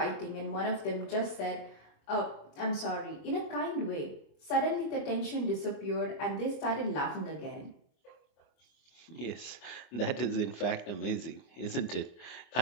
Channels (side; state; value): right; late; 25 ms